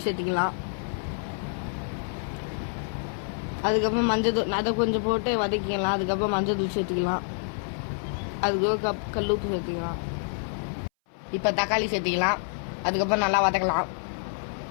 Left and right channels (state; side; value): silent; right; 58 dB below the other